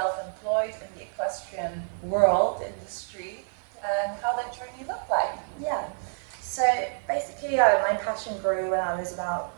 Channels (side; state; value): left; silent; 59 dB below the other